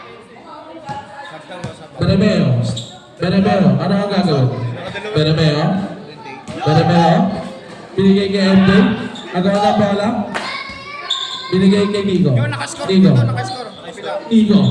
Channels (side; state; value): both; identical; correlation 1.00